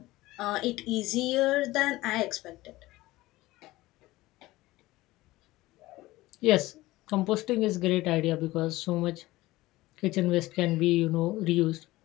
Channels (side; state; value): right; quieter; 18.5 dB